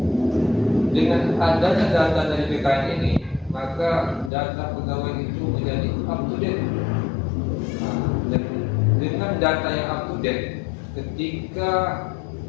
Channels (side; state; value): right; drops out; at 4.3 s